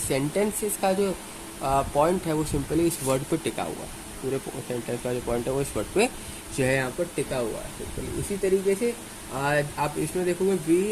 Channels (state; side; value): identical; both; correlation 1.00